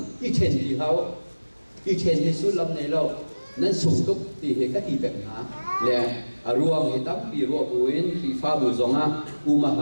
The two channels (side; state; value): both; inverted; correlation -1.00